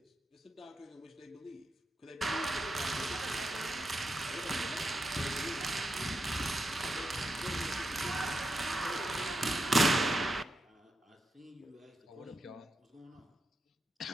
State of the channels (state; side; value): normal; both; correlation 0.85